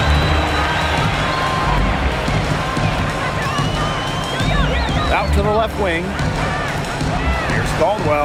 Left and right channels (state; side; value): identical; both; correlation 1.00